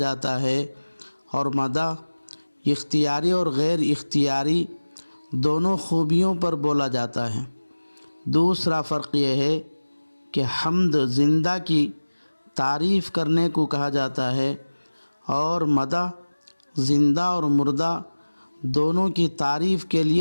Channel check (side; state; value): both; inverted; correlation -1.00